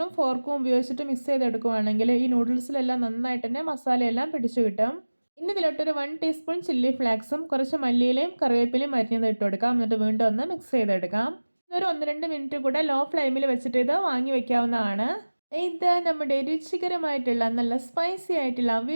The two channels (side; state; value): both; inverted; correlation -1.00